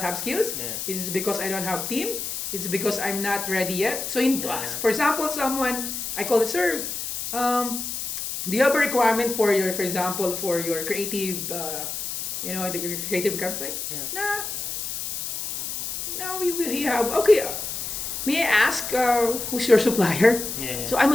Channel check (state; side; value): noise; left; hiss, 5 dB below the sound